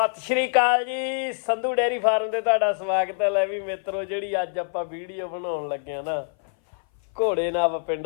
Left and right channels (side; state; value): right; silent; 57 dB below the other